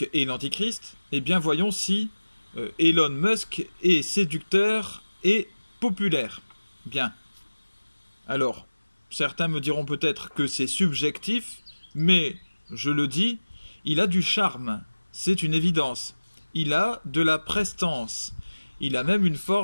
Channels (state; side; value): inverted; both; correlation -1.00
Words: est l'antichrist, eh bien voyons si Elon Musk est séducteur et populaire. Bien. Alors, certains me diront peut-être que c'est subjectif, mais je le dis, il a du charme, c'est une évidence. Il a de la prestance, il a même une